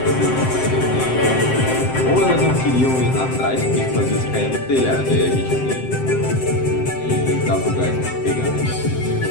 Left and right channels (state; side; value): late; right; 7.7 ms